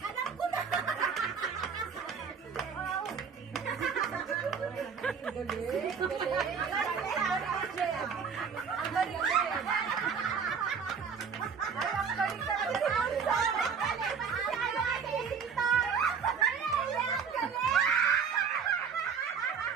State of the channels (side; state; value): left; quieter; 6.3 dB